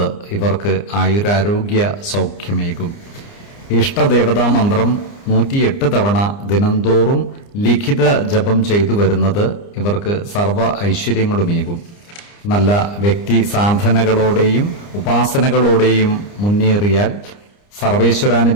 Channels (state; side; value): late; right; 29 ms